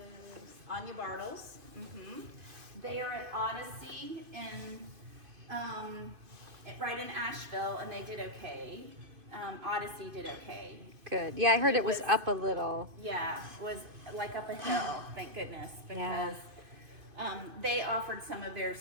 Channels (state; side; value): late; left; 2.5 ms